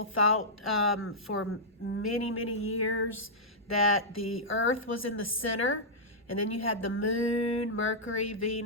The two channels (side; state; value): both; normal; correlation -0.12